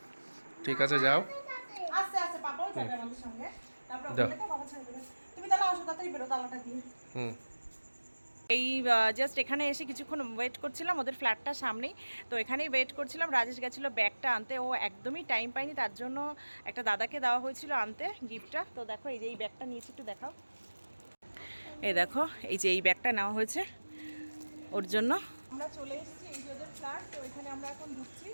ঠিক আছে যাও। আস্তে আস্তে, পাপাও যাবে আমাদের সঙ্গে, তারপর ওখানে বাবা ছেড়ে দেবে। তুমি তাহলে আসো, তাড়াতাড়ি বেরো, তালাটা দিয়ে। এই জাস্ট এখানে এসে কিছুক্ষণ ওয়েট করছিলাম, ওদের ফ্ল্যাটটার সামনেই, তো এখানেই ওয়েট করছিলাম। রাজেশ গেছিলো ব্যাগটা আনতে, ও একদমই টাইম পায়নি, তার জন্য একটা দাদাকে দেওয়া হয়েছিল আনতে গিফটটা। তো দেখো এই যে এই ব্যাগটা নিয়েছি, একটু দেখাও। এই দেখো, এই যে এই ব্যাগটা নেওয়া হয়েছে ওর জন্য। আমরা চলে এসেছি, এই যে ওদের ফ্ল্যাট, তো এখানে আমরা এখন ঢুকছি।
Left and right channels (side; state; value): both; inverted; correlation -1.00